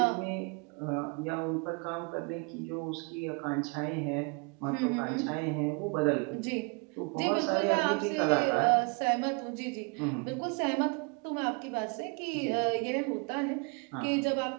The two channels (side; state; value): left; quieter; 32.7 dB